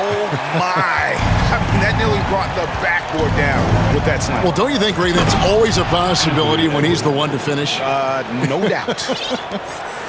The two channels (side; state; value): both; identical; correlation 1.00